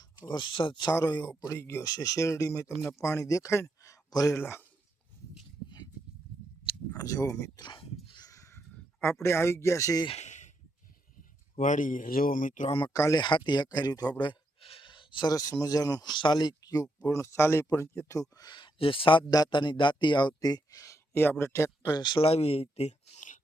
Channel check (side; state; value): both; normal; correlation 0.80